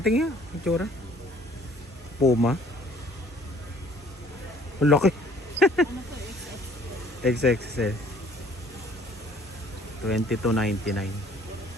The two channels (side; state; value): both; normal; correlation 0.56